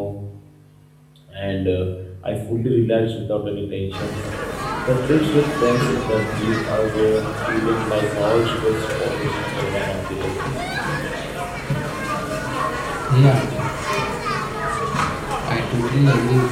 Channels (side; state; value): both; identical; correlation 1.00